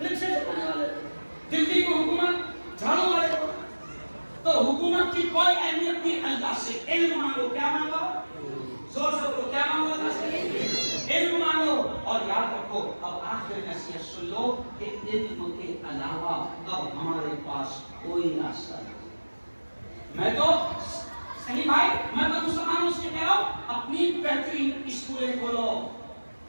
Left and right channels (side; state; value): both; inverted; correlation -1.00